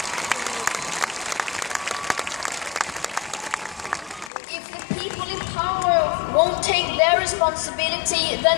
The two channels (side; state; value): right; drops out; at 4.3 s